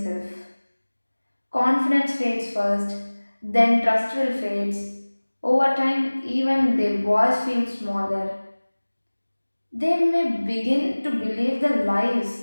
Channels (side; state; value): both; inverted; correlation -1.00